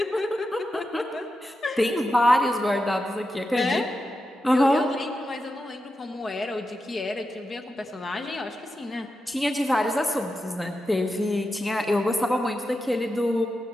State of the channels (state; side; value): normal; both; correlation 0.89